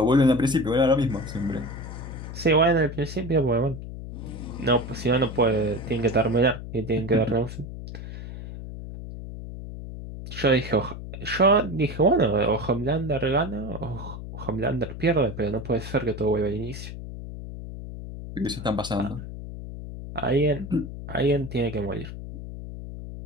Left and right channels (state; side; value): noise; left; hum, 10 dB below the sound